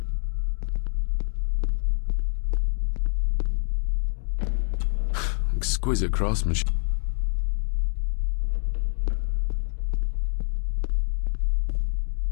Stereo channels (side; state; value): right; silent; digital silence